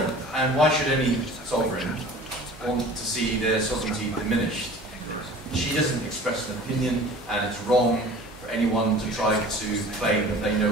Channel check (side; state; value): both; normal; correlation 0.43